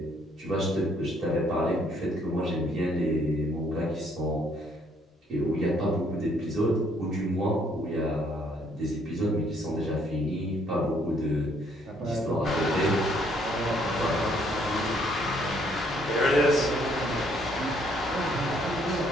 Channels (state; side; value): normal; both; correlation 0.66